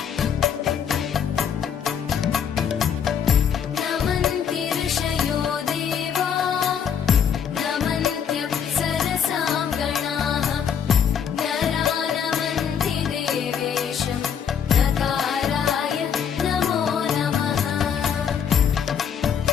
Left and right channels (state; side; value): quieter; right; 7.8 dB